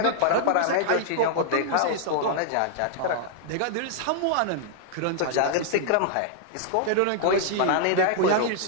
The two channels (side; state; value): both; different; correlation -0.01